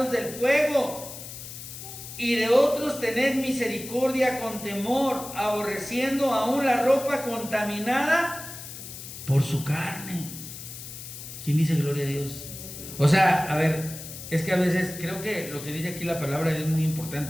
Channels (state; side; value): noise; left; hiss, 11 dB below the sound